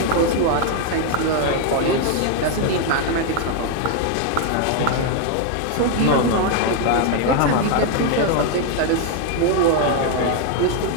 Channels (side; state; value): both; different; correlation 0.00